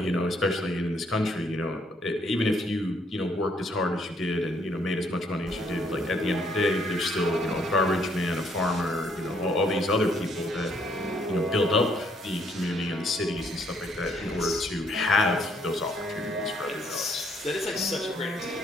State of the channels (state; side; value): normal; both; correlation 0.68